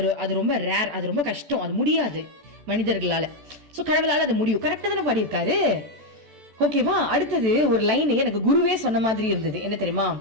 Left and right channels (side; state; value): left; late; 14 ms